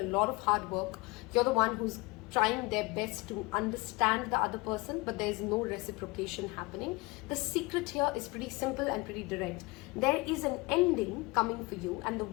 lot of hard work, you're the one who's trying their best to understand the other person, but there's no reciprocation happening. The secret here is pretty simple and pretty direct. There is an ending coming for you, and the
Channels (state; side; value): quieter; right; 24.5 dB